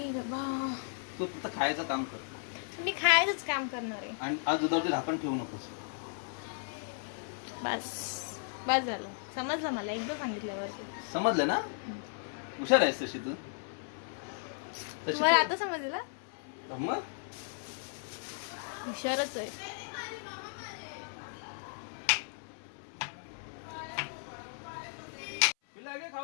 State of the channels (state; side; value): silent; right; 54 dB below the other